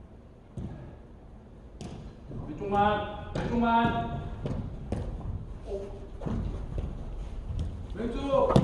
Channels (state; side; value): identical; both; correlation 1.00